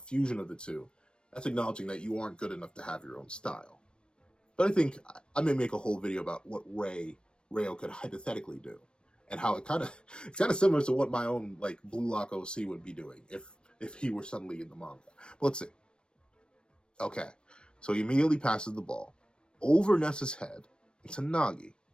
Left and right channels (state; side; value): late; right; 0.054 ms